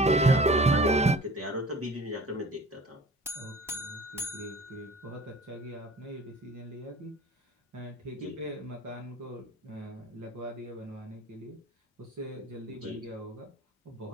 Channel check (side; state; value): both; normal; correlation 0.44